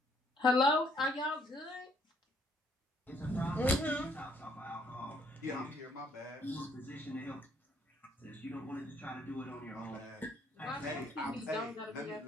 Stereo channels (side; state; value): both; normal; correlation 0.66